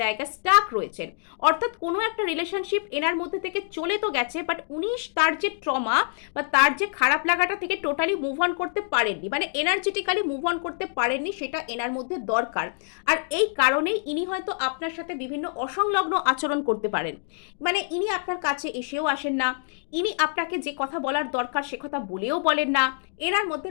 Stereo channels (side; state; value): right; silent; 61 dB below the other